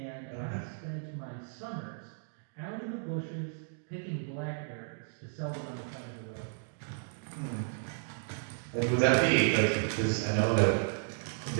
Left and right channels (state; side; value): silent; left; digital silence